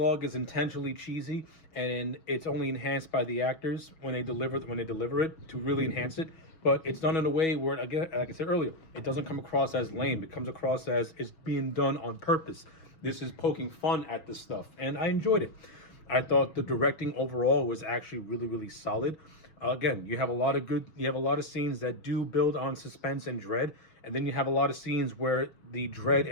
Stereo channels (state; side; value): late; right; 6.2 ms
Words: is intentionally cheesy, and it's only enhanced by the actors when they deliver it to really enhance it. But it's done in a way where, again, like I said earlier, it doesn't come across as lame. It comes across as it's being done on purpose. This is poking fun at this stuff, and I enjoyed it. I thought the directing overall was actually really solid. Again, you have a lot of scenes that do build on suspense and dread, and then you have a lot of scenes where the dread